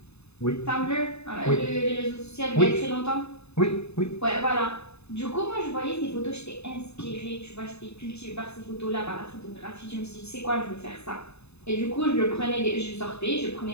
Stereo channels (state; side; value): late; right; 0.80 ms